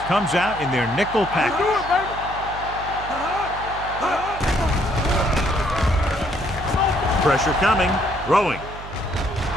comes out in their nickel Do package. it, baby. Pressure coming, throwing.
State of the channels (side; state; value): right; noise; hum, 13 dB below the sound